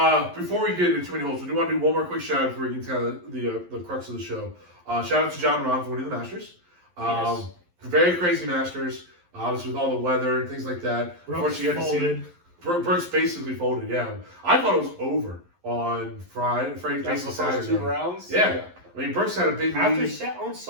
Before we get into too many holes, we do want to do one more quick shout out before we get to the crux of the show. Shout out to John Rahm for winning the Masters. Yes. Very crazy Masters. Obviously with all the weather and things like that. Brooks Unfortunately, you had to see folded. Brooks basically folded. Yeah, I thought it was over on Friday, That's basically the first Saturday. 2 rounds? Yeah. I mean, Brooks had a big lead. On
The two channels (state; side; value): late; left; 11 ms